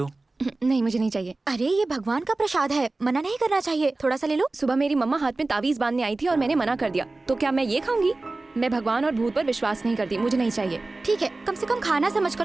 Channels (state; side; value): quieter; left; 3.2 dB